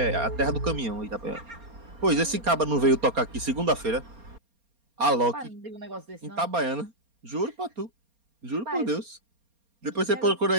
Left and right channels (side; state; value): left; late; 4.3 ms